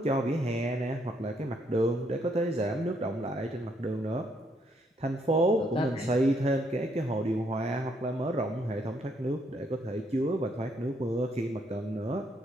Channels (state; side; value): normal; both; correlation 0.72